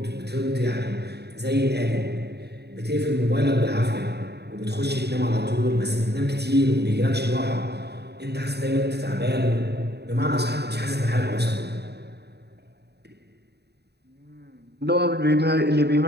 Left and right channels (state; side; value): late; left; 0.48 ms